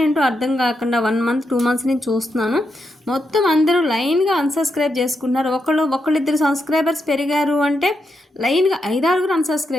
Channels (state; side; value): normal; both; correlation 0.83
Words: ఏంటో అర్థం కాకుండా 1 మంత్ 2 మంత్స్ నుంచి చూస్తున్నాను. మొత్తం అందరూ లైన్గా అన్సబ్స్క్రైబ్ చేసుకుంటున్నారు. ఒకళ్ళిద్దరు సబ్స్క్రైబర్స్ పెరిగారు అంటే లైన్గా 5-6